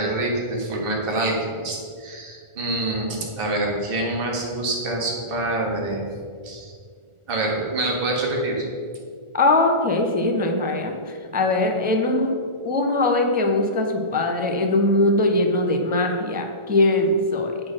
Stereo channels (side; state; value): left; late; 1.4 ms